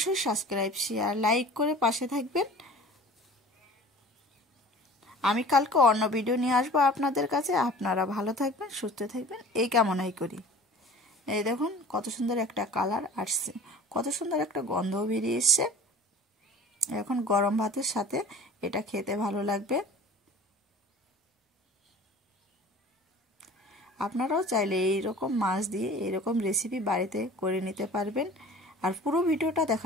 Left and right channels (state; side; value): normal; both; correlation 0.43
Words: সাবস্ক্রাইব, শেয়ার, লাইক করে পাশে থাকবেন। আমি কালকে অন্য ভিডিও নিয়ে আসবো আপনাদের কাছে। আপনারা ভালো থাকবেন, সুস্থ থাকবেন, এই কামনাই করি। এই দেখুন কত সুন্দর একটা কালার আসছে, কত সুন্দর একটা গন্ধও বেরিয়ে এসছে। এখন গরম ভাতের সাথে এটা খেতে ভালো লাগবে। আপনারাও চাইলে এইরকম মাছ দিয়ে এইরকম রেসিপি বাড়িতে করে নিতে পারবেন। আর পুরো ভিডিওটা